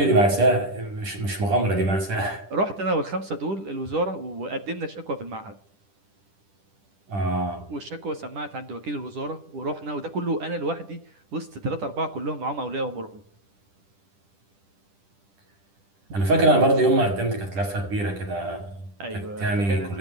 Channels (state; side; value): late; left; 10 ms